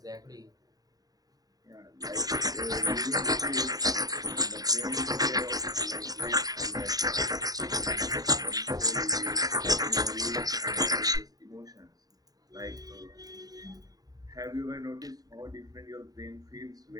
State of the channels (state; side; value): late; left; 0.18 ms